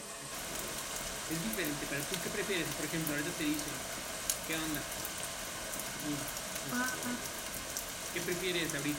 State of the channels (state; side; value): identical; both; correlation 1.00